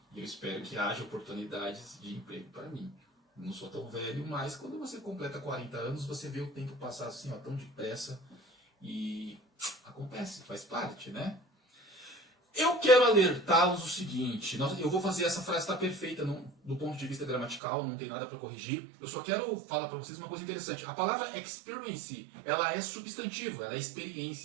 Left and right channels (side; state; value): left; drops out; at 17.6 s